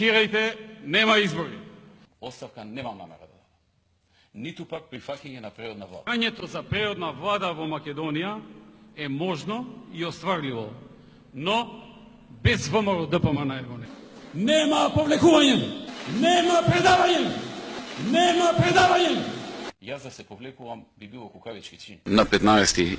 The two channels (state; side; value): identical; both; correlation 1.00